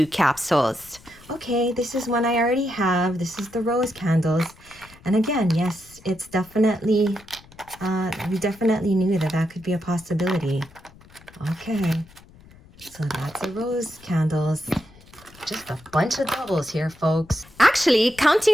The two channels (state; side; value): noise; left; rumble, 24 dB below the sound